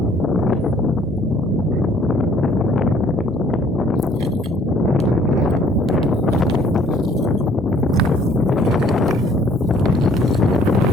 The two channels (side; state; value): both; normal; correlation 0.60